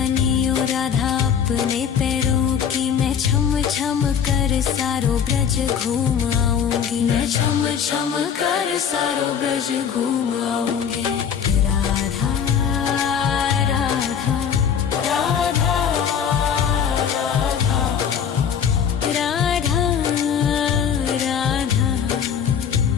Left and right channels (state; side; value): quieter; right; 7.8 dB